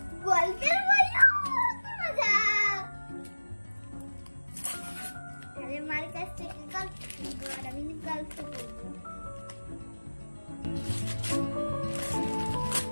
গল্পের বই, কি মজা! মার কাছ থেকে গল্প শুনবো আর আমি গল্প করবো।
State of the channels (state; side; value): inverted; both; correlation -1.00